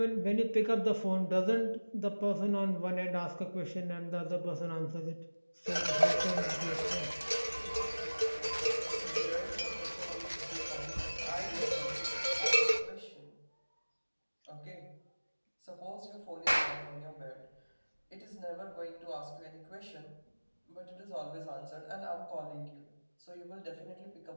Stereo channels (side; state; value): both; inverted; correlation -1.00